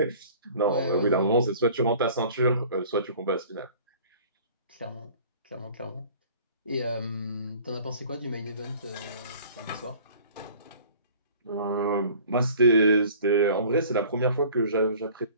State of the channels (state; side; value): inverted; both; correlation -0.48